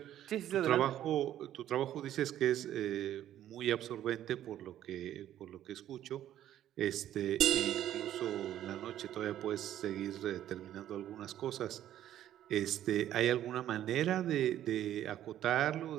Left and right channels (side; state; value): left; quieter; 11.9 dB